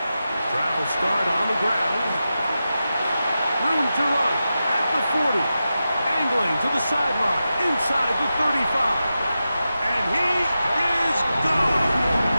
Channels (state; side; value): inverted; both; correlation -0.91